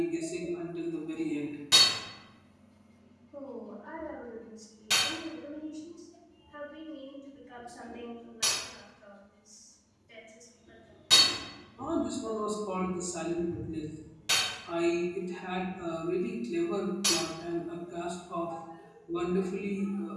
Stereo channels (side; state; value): both; identical; correlation 1.00